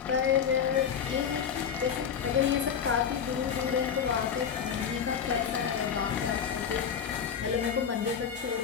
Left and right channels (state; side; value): quieter; right; 7.5 dB